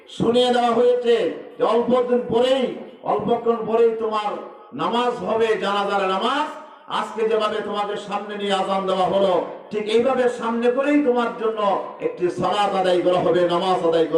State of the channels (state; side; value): identical; both; correlation 1.00